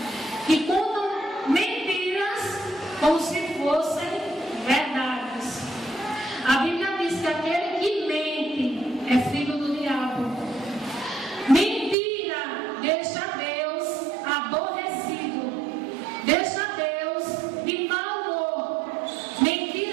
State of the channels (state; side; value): drops out; left; at 12.0 s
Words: que contam mentiras como se fossem verdades. A Bíblia diz que aquele que mente é filho do diabo. Mentira deixa Deus aborrecido, deixa Deus de mau humor.